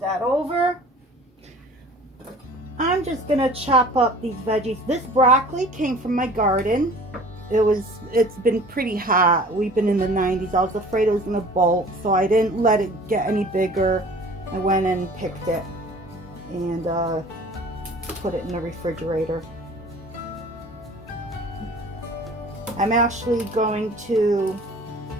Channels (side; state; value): both; normal; correlation 0.46